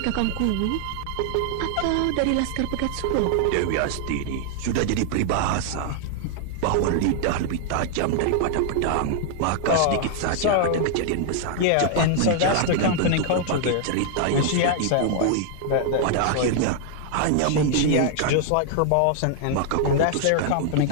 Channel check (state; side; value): different; both; correlation 0.00